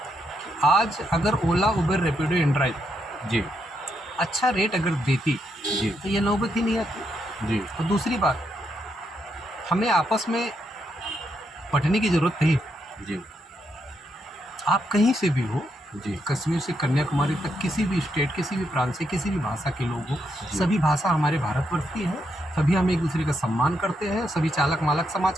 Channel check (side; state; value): both; normal; correlation 0.79